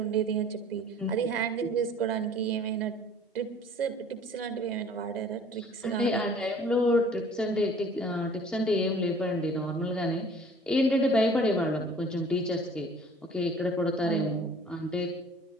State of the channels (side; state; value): both; normal; correlation 0.51